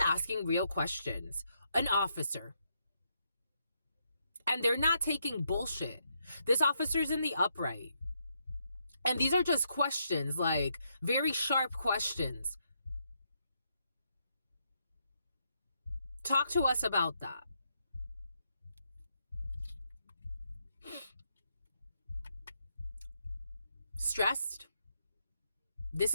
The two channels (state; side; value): inverted; both; correlation -0.78